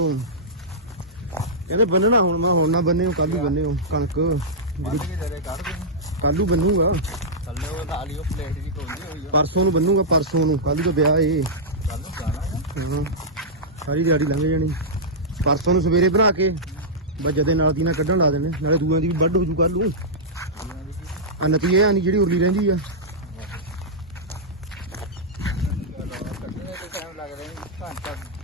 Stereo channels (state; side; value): normal; both; correlation -0.12